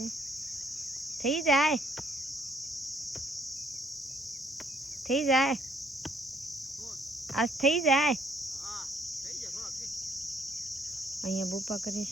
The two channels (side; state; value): both; normal; correlation 0.66